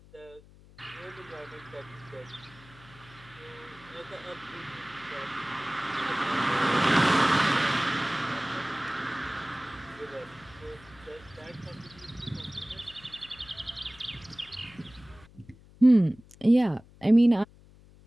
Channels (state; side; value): noise; left; hum, 24 dB below the sound